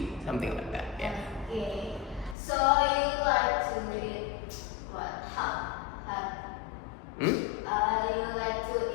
something like that. Yeah. Okay. So you like to eat what? Hot. Hmm? You like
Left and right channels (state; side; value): drops out; right; at 2.4 s